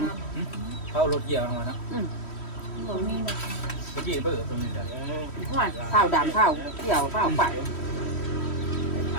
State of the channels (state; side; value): late; right; 3.1 ms